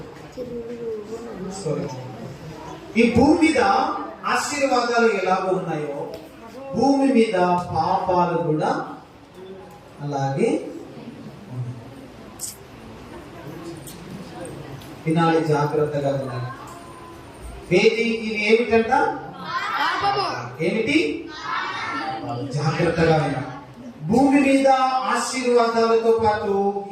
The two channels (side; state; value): both; identical; correlation 1.00